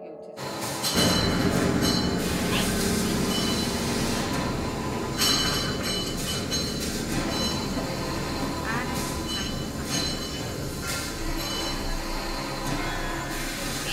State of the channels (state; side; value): identical; both; correlation 1.00